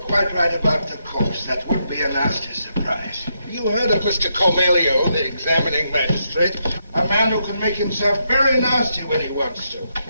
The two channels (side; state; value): both; inverted; correlation -0.80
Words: right about the corpse. That would be a nasty surprise. you heard of Mr. Cormelio, the examining magistrate? A man who can make himself very nasty when he wants to.